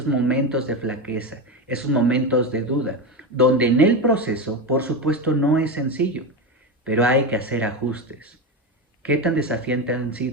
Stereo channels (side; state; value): both; normal; correlation 0.18